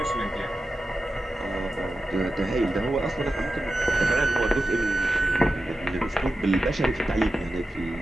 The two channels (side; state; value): both; normal; correlation 0.91